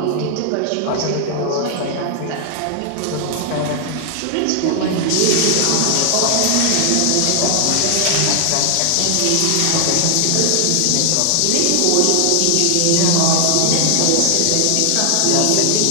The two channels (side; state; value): both; different; correlation 0.00